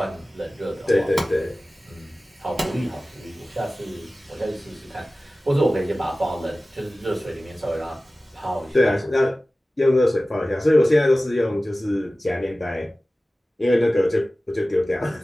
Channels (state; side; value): normal; both; correlation 0.97